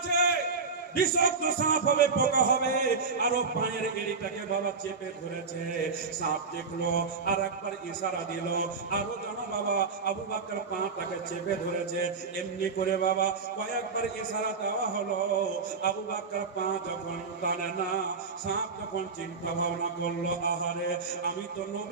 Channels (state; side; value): quieter; left; 4.7 dB